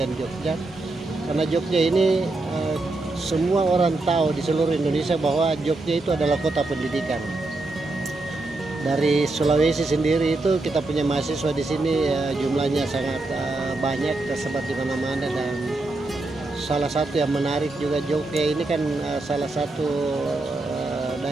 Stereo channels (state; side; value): quieter; left; 3.1 dB